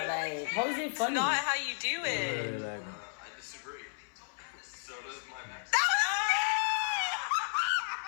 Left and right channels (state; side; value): silent; right; 56 dB below the other